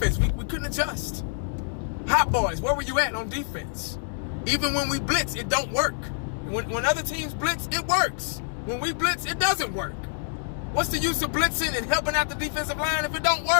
we couldn't adjust. Hot boys, where were you at on defense? Even when we blitz, it don't work. When other teams blitz, it works. When we blitz, it doesn't work. What's the use of blitzing and helping out the defensive line if it don't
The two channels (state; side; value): silent; right; digital silence